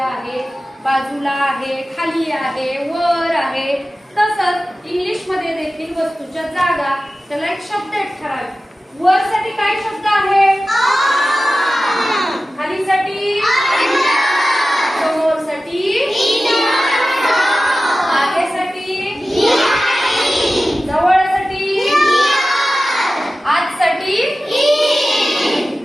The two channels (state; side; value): normal; both; correlation 0.95